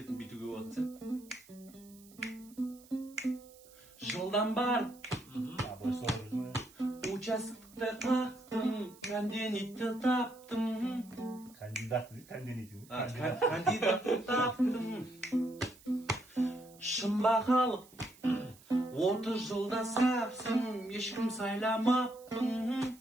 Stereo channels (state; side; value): noise; right; hiss, 24 dB below the sound